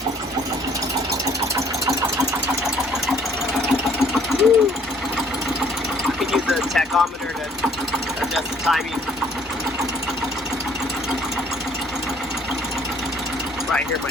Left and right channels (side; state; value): both; normal; correlation 0.60